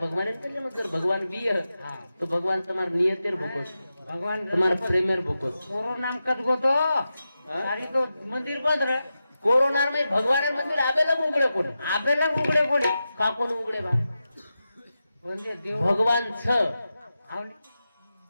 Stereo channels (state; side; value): inverted; both; correlation -0.91